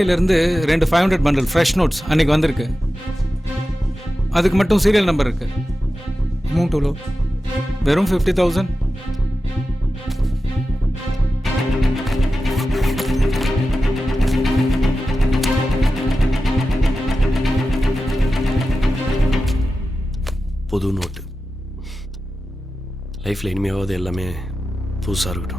2 500 பண்டில் ஃப்ரெஷ் நோட்ஸ் அன்னைக்கு வந்திருக்கு. அதுக்கு மட்டும் சீரியல் நம்பர் இருக்கு. அமௌண்ட் எவ்வளோ? வெறும் 50,000. புது நோட்டு. லைஃப்பில் இனிமேவாவது எல்லாமே புதுசாக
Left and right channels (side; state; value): both; normal; correlation 0.93